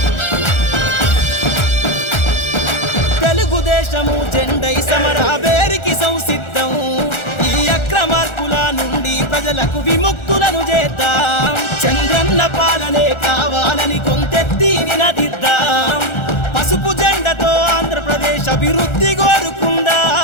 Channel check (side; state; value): right; late; 1.4 ms